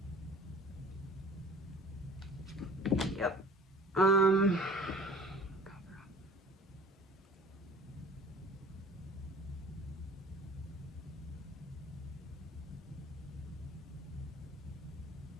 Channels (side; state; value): both; normal; correlation 0.45